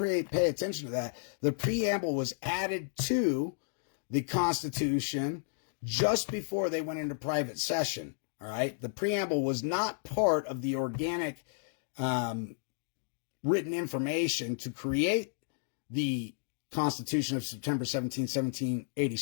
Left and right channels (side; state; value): right; silent; digital silence